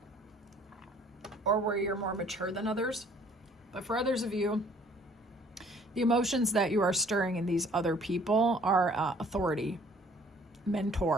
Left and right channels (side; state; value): both; normal; correlation 0.57